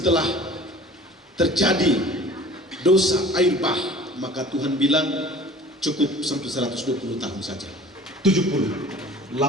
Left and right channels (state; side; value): normal; both; correlation 0.46